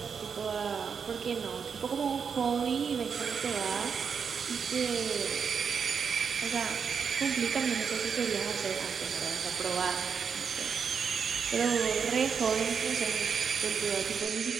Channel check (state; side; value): quieter; left; 6.4 dB